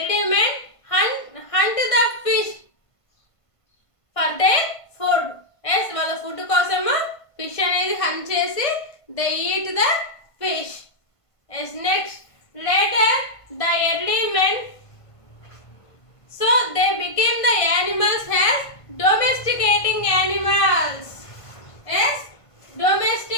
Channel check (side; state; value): right; late; 1.5 ms